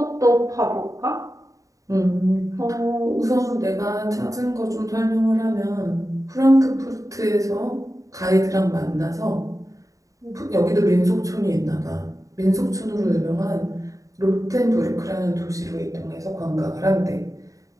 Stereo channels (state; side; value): late; left; 0.16 ms